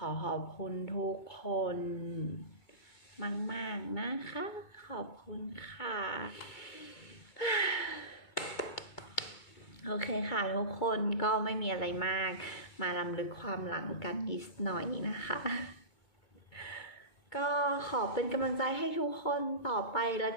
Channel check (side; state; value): right; late; 2.2 ms